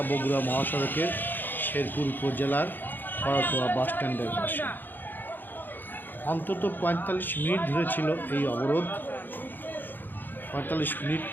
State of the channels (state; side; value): late; right; 0.091 ms